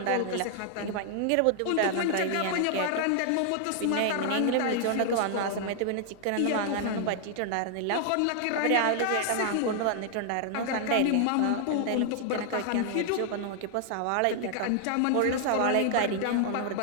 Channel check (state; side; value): different; both; correlation 0.00